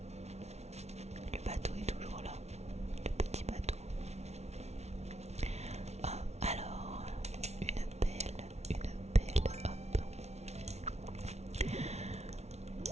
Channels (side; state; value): left; late; 0.31 ms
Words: Le bateau est toujours là, le petit bateau. Ah, alors, une pelle, hop.